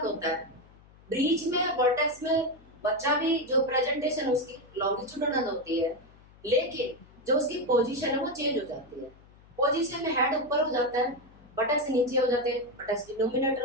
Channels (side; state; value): left; noise; hum, 25 dB below the sound